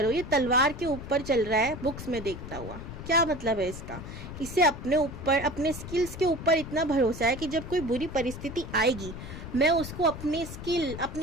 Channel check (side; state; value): left; noise; rumble, 10 dB below the sound